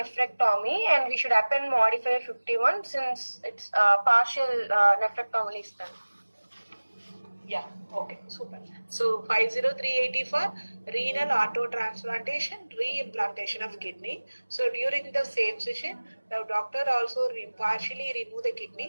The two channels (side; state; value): both; inverted; correlation -1.00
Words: and we should append modifier 51 since it's partial nephrectomy is done. Yeah, okay, super. So 50380 for renal autotransplantation, reimplantation of kidney. So during the same session, the doctor also partially remove the